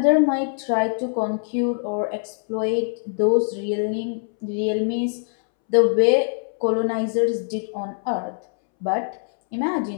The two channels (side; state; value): right; silent; 63 dB below the other